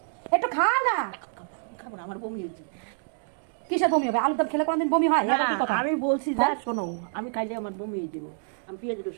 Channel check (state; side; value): silent; left; digital silence